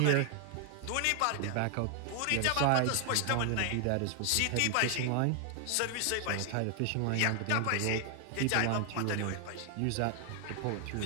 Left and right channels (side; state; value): both; different; correlation 0.00